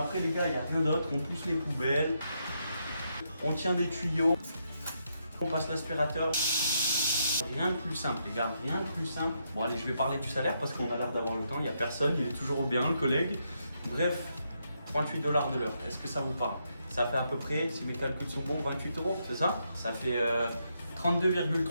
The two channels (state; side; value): inverted; both; correlation -0.79